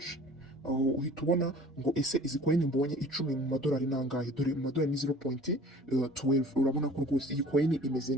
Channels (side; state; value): both; normal; correlation 0.47